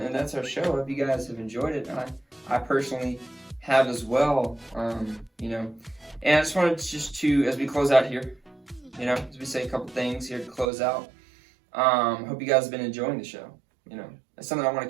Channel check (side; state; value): left; drops out; at 10.7 s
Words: that's our show. I hope you guys have enjoyed it. I personally have as well. And I just wanted to, as we close out here, as we say a couple things here to close out. Hope you guys have been enjoying the show. That's something I want